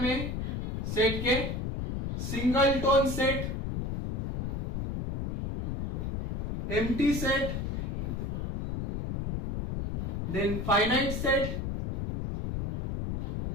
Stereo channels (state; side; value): noise; left; rumble, 2 dB below the sound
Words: सेट के, singleton set, empty set, then finite set